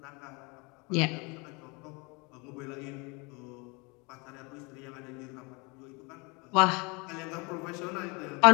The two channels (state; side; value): quieter; right; 29.0 dB